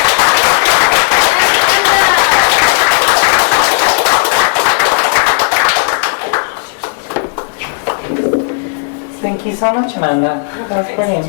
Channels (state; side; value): silent; right; digital silence